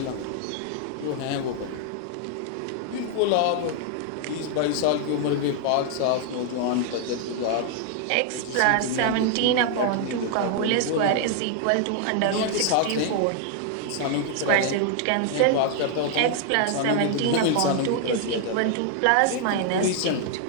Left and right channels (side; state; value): both; different; correlation 0.00